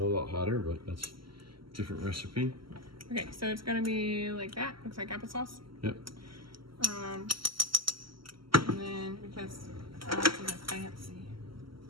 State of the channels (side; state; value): left; late; 0.74 ms